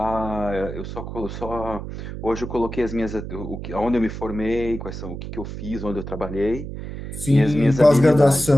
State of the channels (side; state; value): right; noise; hum, 8 dB below the sound